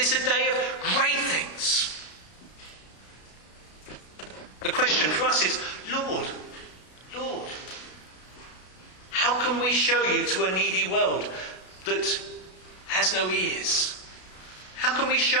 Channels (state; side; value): late; right; 33 ms